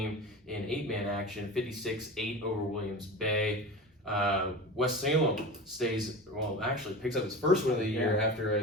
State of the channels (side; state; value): both; normal; correlation 0.31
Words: in 8-man action, 56-8 over Williams Bay. West Salem picks up its first win of the year after